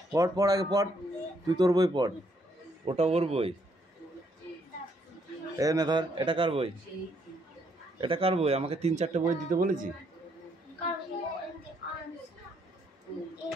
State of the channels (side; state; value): both; normal; correlation 0.71